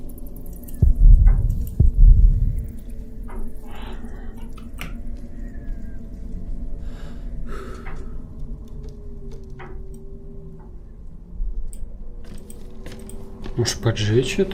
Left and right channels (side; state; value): both; identical; correlation 1.00